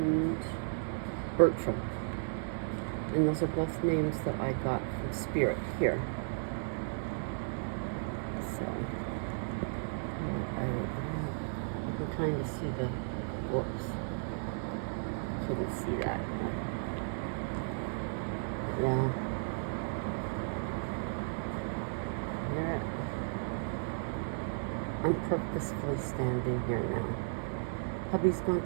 Bertram. And those are both names that I got from Spirit here. So, you can kind of see the, whoops. Couldn't see that. Yeah. Yeah. I'm purposefully standing here now. Hubby's going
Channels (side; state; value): left; silent; 55 dB below the other